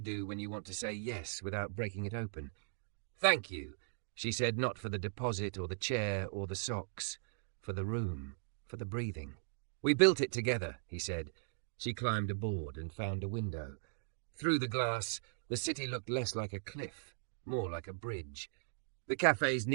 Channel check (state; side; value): silent; left; digital silence